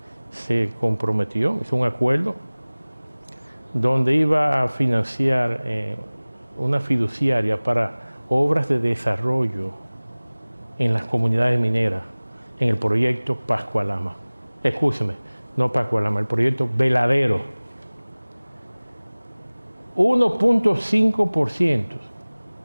se comprometió, hizo un acuerdo donde iba a financiar una fiduciaria para obras de desarrollo en las comunidades mineras, en el proyecto Pascualama. Escúcheme, no Pascualama, el proyecto Veladero. 1.5%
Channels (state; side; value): inverted; both; correlation -1.00